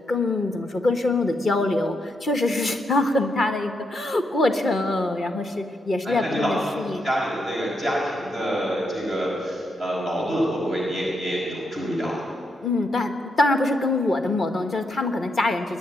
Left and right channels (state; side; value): normal; both; correlation 0.80